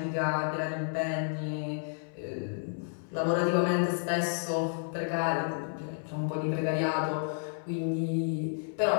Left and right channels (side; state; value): right; silent; 57 dB below the other